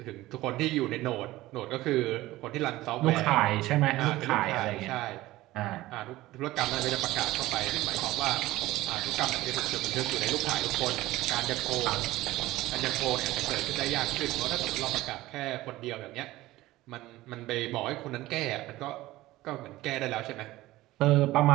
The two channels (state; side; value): quieter; left; 17.4 dB